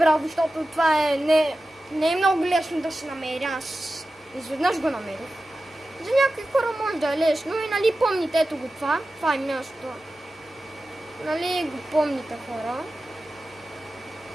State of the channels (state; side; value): normal; both; correlation 0.94